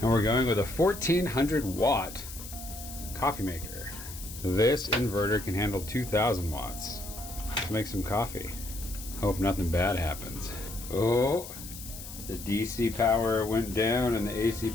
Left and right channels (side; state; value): left; noise; hiss, 12 dB below the sound